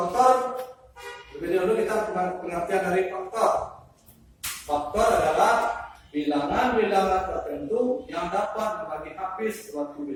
Lebih dahulu kita pengertian dari faktor. Faktor adalah bilangan-bilangan tertentu yang dapat membagi habis suatu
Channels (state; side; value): identical; both; correlation 1.00